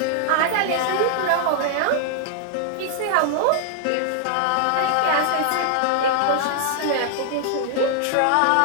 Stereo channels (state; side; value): different; both; correlation -0.01